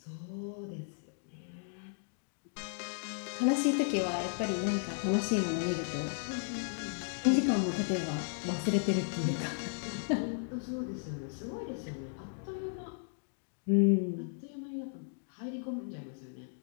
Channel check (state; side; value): silent; right; digital silence